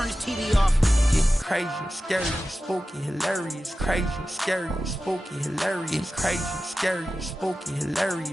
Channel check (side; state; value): both; normal; correlation 0.94